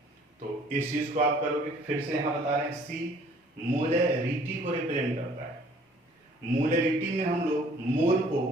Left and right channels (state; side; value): normal; both; correlation 0.56